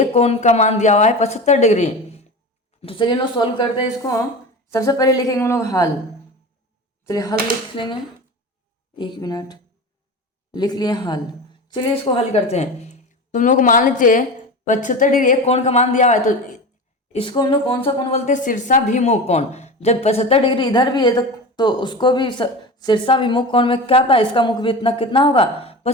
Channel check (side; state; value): both; normal; correlation 0.29